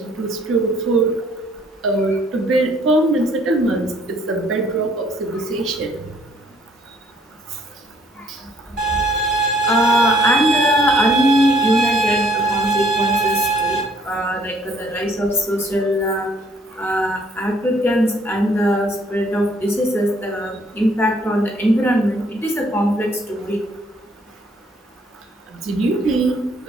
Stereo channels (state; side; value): normal; both; correlation 0.63